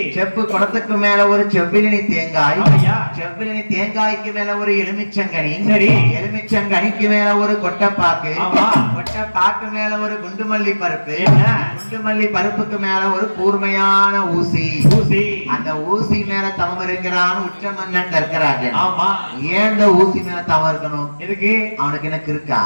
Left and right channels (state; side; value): inverted; both; correlation -1.00